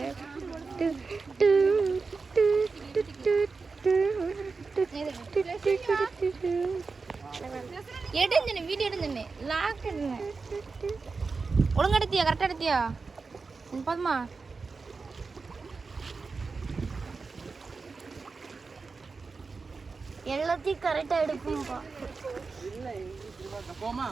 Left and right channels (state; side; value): quieter; left; 4.4 dB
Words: எடுந்தனே வீடியோ எடுந்தனே லாக் எடுங்க. ஒழுங்கா எடுத்தியா? கரெக்டா எடுத்தியா? பாத்துமா எல்லாத்தையும் கரெக்டா எடுக்கும்பா. போமா